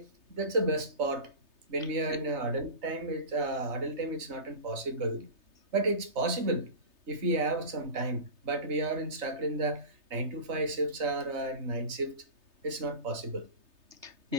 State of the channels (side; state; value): left; late; 3.3 ms